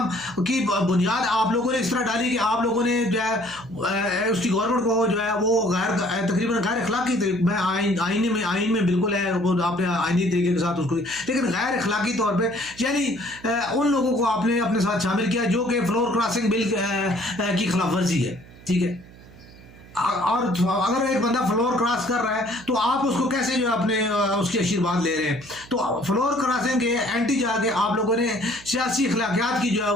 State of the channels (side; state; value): right; noise; hum, 21 dB below the sound